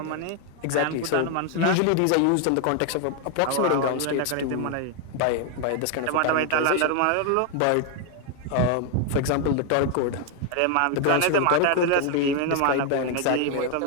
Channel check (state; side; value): different; both; correlation 0.00